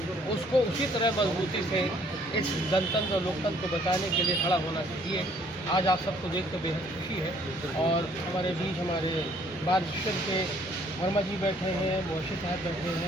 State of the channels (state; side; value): normal; both; correlation 0.62